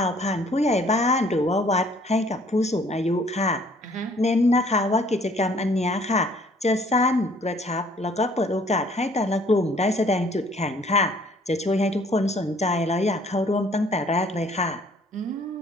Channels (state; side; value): normal; both; correlation 0.59